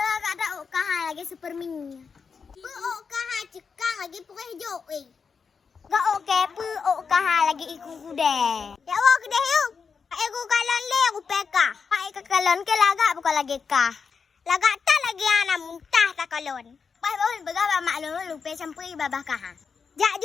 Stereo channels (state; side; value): quieter; right; 5.7 dB